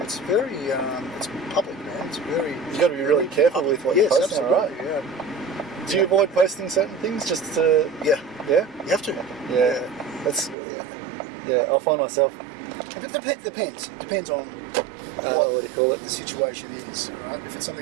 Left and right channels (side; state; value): left; drops out; at 10.6 s